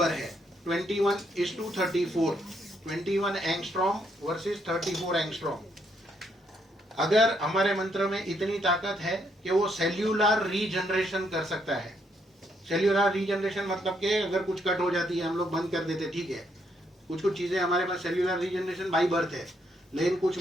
है। 21:34, 21 एंगस्ट्रॉम वर्सेस 34 एंगस्ट्रॉम। अगर हमारे मंत्र में इतनी ताकत है कि वो सेल्यूलर रीजनरेशन कर सकता है। सेल्यूलर रीजनरेशन मतलब कि अगर कुछ कट हो जाती है हम लोग बंद कर देते, ठीक है, कुछ कुछ चीजें हमारे पास सेल्यूलर रीजनरेशन बाई बर्थ है। लेकिन कुछ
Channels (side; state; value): both; normal; correlation 0.74